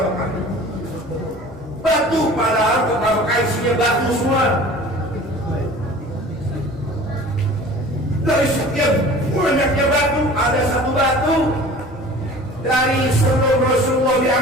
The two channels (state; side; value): normal; both; correlation 0.43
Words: Mekah. Batu, padahal kota Mekah isinya batu semua. Dari sekian banyaknya batu, ada satu batu dari sebelum Rasulullah